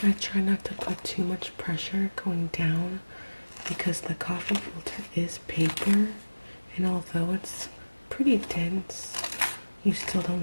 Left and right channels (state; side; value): inverted; both; correlation -1.00